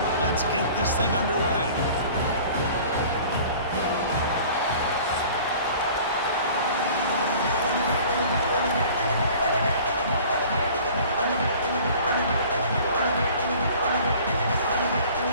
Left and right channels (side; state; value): both; inverted; correlation -0.47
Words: Let's get this thing underway.